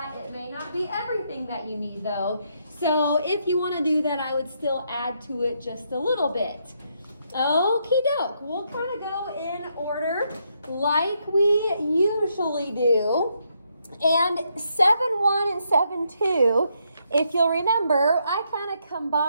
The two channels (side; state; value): both; inverted; correlation -0.77